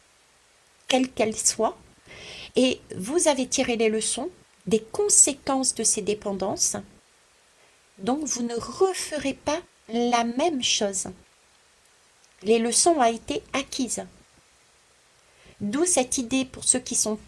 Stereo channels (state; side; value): identical; both; correlation 1.00